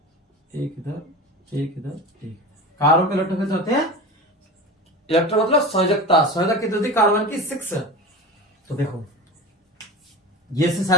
एक इधर, एक इधर, एक। कार्बन के इलेक्ट्रॉन कितने होते हैं, इलेक्ट्रॉन मतलब संयोजकता कितनी होती है कार्बन की, 6। तो देखो ये इससे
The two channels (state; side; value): normal; both; correlation 0.30